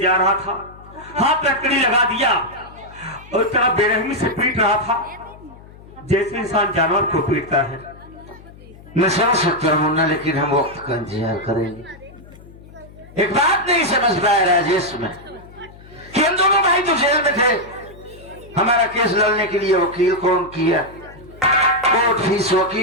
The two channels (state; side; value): noise; left; hum, 21 dB below the sound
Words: रहा था, हाथ लकड़ी लगा दिया और इतना बेरहमी से पीट रहा था जैसे इंसान जानवर को पीटता है। मैं समझ सकता हूँ मुन्ना, लेकिन हम वक्त का इंतजार करेंगे। एक बात नहीं समझ पाया राजेश में कि हम दोनों भाई तो जेल में थे, हमारा केस लड़ने के लिए वकील कौन किया, कोर्ट फीस,